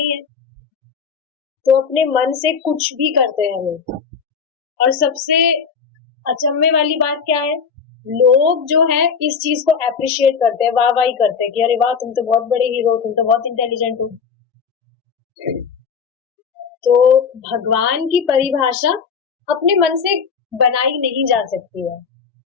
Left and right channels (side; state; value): right; quieter; 6.2 dB